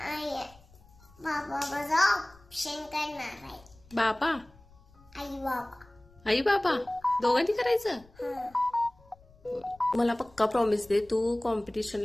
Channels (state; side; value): noise; left; rumble, 27 dB below the sound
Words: बाबा माझा ऑप्शन करणार आहे. बाबा आई बाबा. आई बाबा दोघांनी करायचं. मला पक्का प्रॉमिस दे, तू